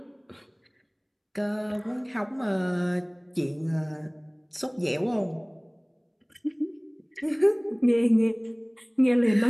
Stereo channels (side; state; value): both; identical; correlation 1.00